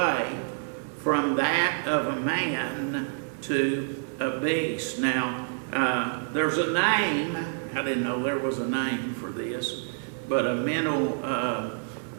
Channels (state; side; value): silent; left; 60 dB below the other